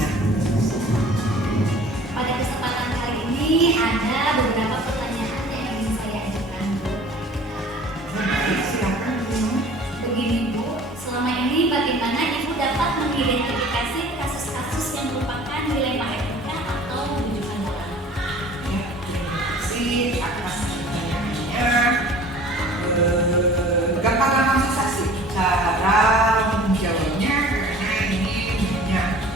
Pada kesempatan kali ini ada beberapa pertanyaan yang ingin saya ajukan, Bu. Baik, silakan Bu. Begini, Bu, selama ini bagaimana Ibu dapat mengidentifikasi kasus-kasus yang merupakan dilema etika atau rujukan moral? Ya, terima kasih atas pertanyaannya. Gampang susah sih cara menjawabnya karena ini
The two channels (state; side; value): normal; both; correlation 0.47